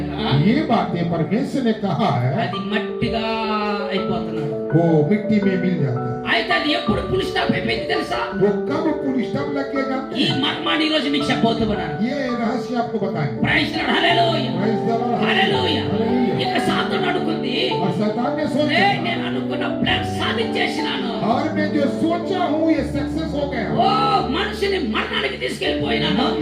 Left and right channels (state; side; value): identical; both; correlation 1.00